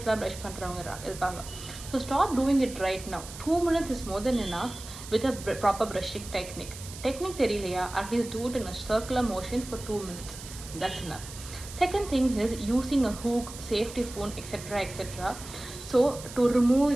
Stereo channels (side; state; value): right; noise; hiss, 13 dB below the sound